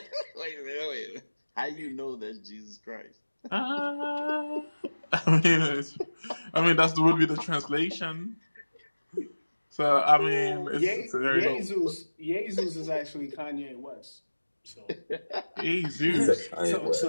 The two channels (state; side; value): inverted; both; correlation -1.00